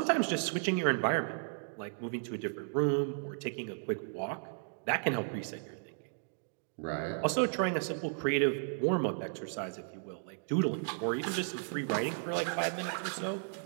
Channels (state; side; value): silent; left; digital silence